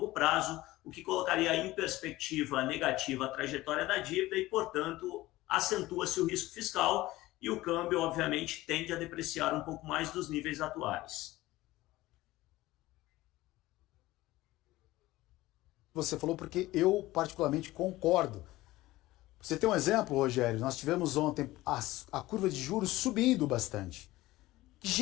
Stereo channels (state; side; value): quieter; right; 17.8 dB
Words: prazo, o que colocaria em perspectiva negativa a trajetória da dívida e, portanto, acentua-se o risco fiscal, e o câmbio, obviamente, tende a depreciar um pouco mais dos níveis atuais. Você falou porque eu particularmente concordo. Você tem um exemplo, Rogério? Nós tivemos ontem a curva de juros subindo bastante. Que